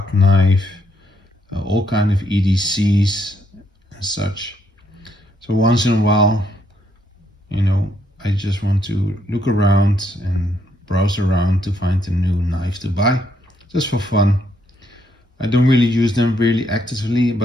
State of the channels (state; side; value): normal; both; correlation 0.74